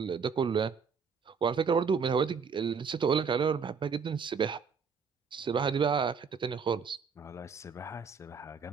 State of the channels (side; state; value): left; quieter; 5.8 dB